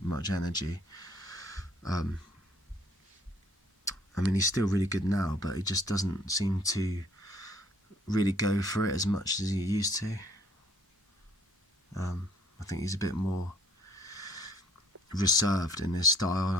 much energy. I mean, he's still really good now, but he just doesn't seem to really go for it as much as he used to. I think he's a bit more reserved in his style, and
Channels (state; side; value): normal; both; correlation 0.59